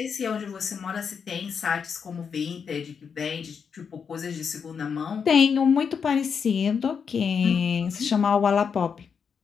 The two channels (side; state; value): right; quieter; 6.4 dB